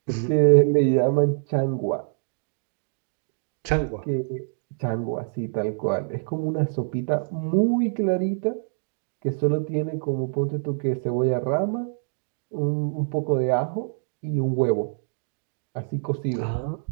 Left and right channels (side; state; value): left; silent; digital silence